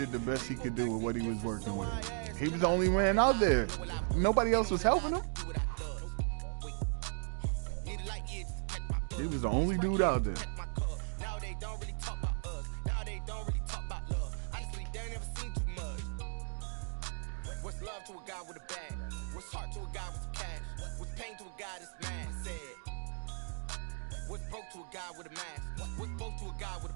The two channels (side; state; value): left; silent; 53 dB below the other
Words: the best he could do with what he was working with. He was the only man out there. Nobody else was helping him. He was the only dude out there. What's love to a guy with a bag? What's heart to a guy with cash? What's pain to a guy that's mad? Said. What's broke to a guy with a mask? What's both to a guy with a